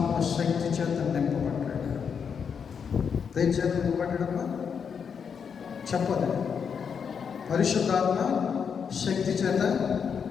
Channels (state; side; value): quieter; right; 6.7 dB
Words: శక్తి చేత నింపబడ్డాడు. దేని చేత నింపబడ్డాడమ్మా చెప్పదు. పరిశుద్ధాత్మ శక్తి చేత